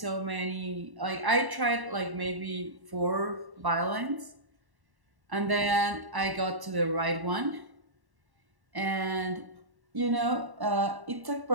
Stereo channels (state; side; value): late; left; 1.1 ms